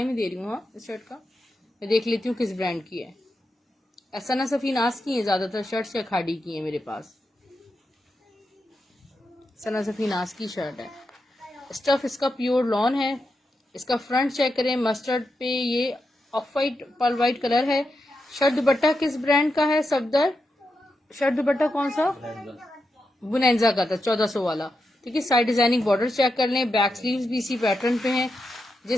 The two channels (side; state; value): both; normal; correlation 0.87